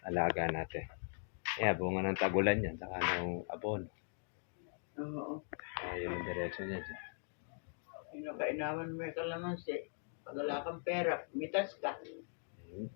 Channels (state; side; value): silent; right; digital silence